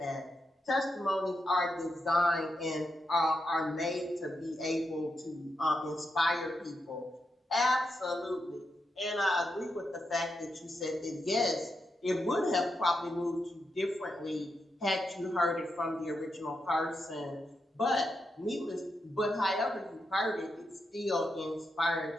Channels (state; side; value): normal; both; correlation 0.85